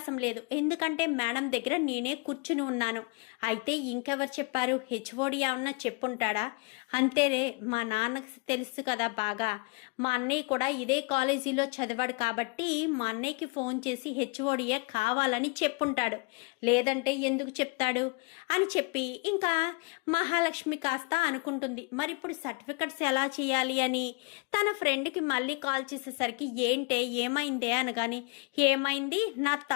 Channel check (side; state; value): right; quieter; 30.7 dB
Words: లేదు, ఎందుకంటే మేడం దగ్గర నేనే కూర్చుని ఉన్నాను, అయితే ఇంకెవరు చెప్పారు, హెచ్ఓడి ఏమన్నా చెప్పుంటాడా, అంతేనే మా నాన్నకు తెలుసు కదా బాగా, మా అన్నయ్య కూడా ఇదే కాలేజీలో చదివాడు కాబట్టి మా అన్నయ్యకి ఫోన్ చేసి హెచ్ఓడియే కావాలని చెప్పుంటాడు, లేదంటే ఎందుకు చెప్తాడు అని చెప్పి ఇంకా మహాలక్ష్మి కాస్త అనుకుంటుంది. మరి ఇప్పుడు సర్టిఫికెట్స్ ఎలా చేయాలి అని తన ఫ్రెండ్కి మళ్ళీ కాల్ చేసేసరికి ఏంటే ఏమైందే అనగాని ఏమైంది, నా